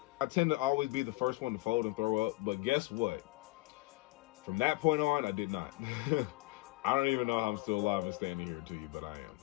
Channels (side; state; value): right; quieter; 22.1 dB